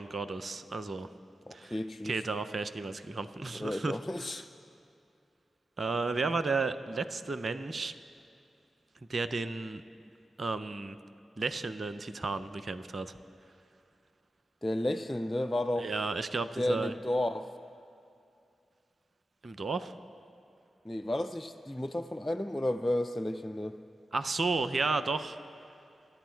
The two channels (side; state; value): both; normal; correlation 0.90